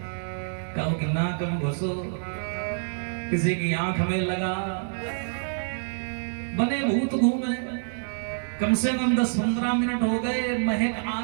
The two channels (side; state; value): left; silent; 60 dB below the other